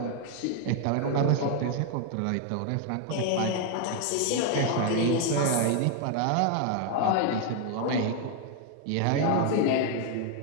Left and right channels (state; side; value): different; both; correlation 0.01